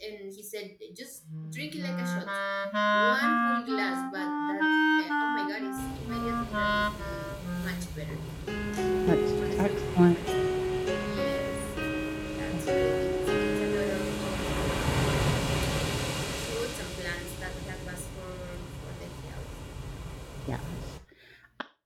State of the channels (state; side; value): identical; both; correlation 1.00